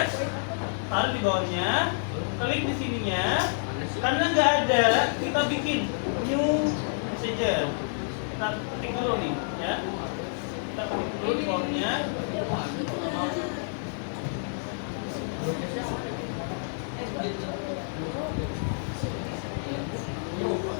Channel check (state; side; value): silent; right; 55 dB below the other